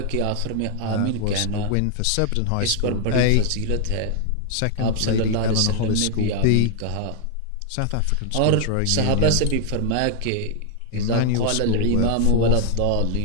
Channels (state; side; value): different; both; correlation 0.00